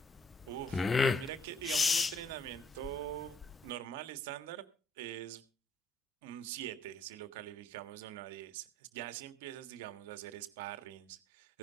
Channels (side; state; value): both; normal; correlation 0.66